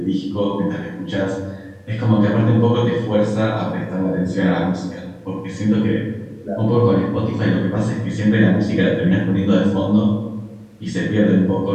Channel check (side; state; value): both; identical; correlation 1.00